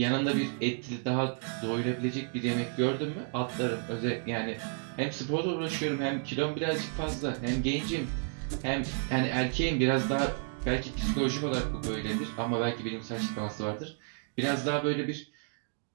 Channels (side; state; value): left; silent; 57 dB below the other